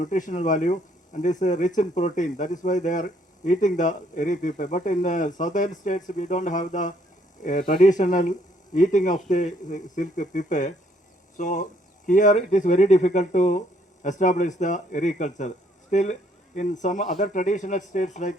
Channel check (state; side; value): normal; both; correlation 0.67